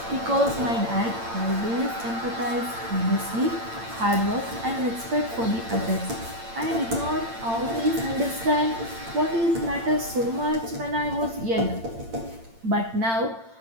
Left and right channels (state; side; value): late; left; 8.8 ms